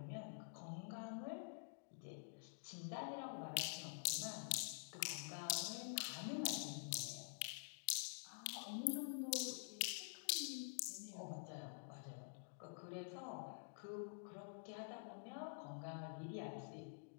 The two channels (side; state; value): right; silent; digital silence